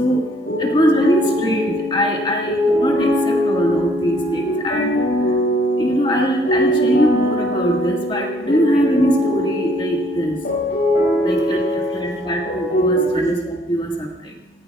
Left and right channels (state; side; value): normal; both; correlation 0.63